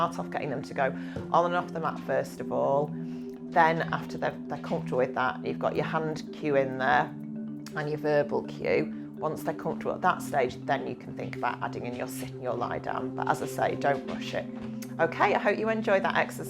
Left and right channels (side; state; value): both; identical; correlation 1.00